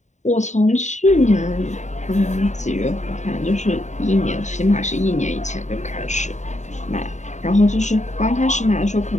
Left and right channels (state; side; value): late; right; 0.34 ms